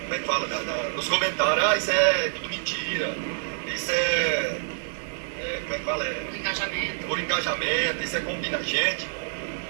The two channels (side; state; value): left; silent; 60 dB below the other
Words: como é que fala? Nos comentários, isso é tudo mentira, isso como é que fala? Por engajamento, isso é combina gente.